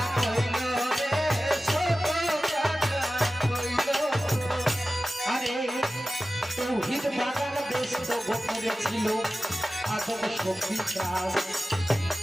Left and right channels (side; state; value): both; normal; correlation 0.95